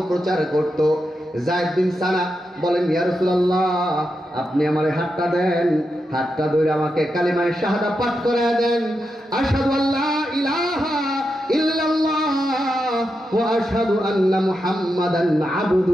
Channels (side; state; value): both; normal; correlation 0.87